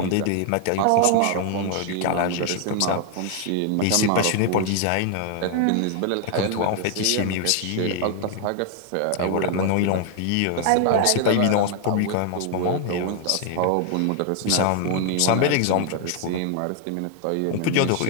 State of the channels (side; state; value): both; different; correlation 0.00